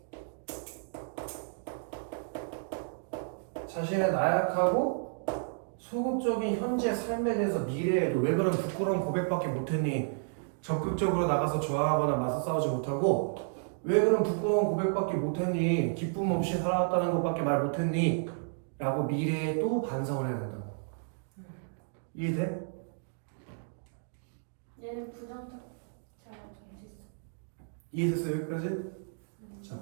자신의 나약하고 소극적인 현재 삶에 대해서 미래에도 왜 그런 부끄러운 고백밖에 못했니? 적극적으로 나가서 저항하거나 맞서 싸우지 못하고 왜 그런 부끄러운 고백밖에 못했니? 기쁨 없이 살아왔다는 것밖에 말 못했니? 라고 미래에 또 반성을 해야 된다고. 이해돼? 얘는 부정적. 잘 정했어. 이해됐어 여기까지? 자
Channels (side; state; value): left; silent; digital silence